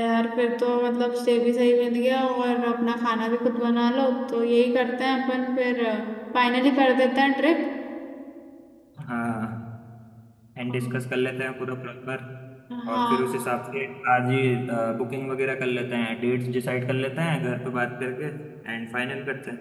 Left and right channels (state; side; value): identical; both; correlation 1.00